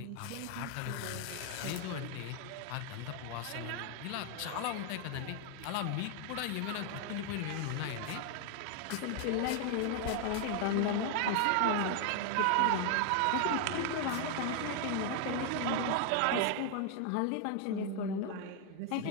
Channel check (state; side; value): different; both; correlation 0.00